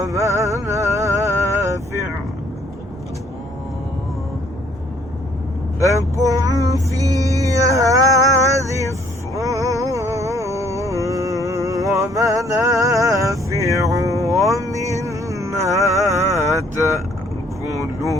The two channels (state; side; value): normal; both; correlation 0.63